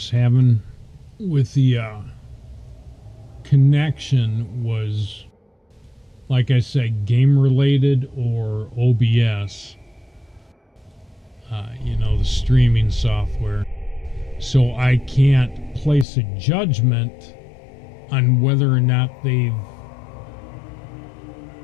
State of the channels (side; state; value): right; drops out; at 16.1 s